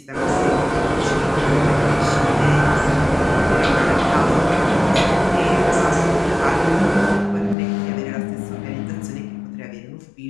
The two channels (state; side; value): drops out; right; at 7.6 s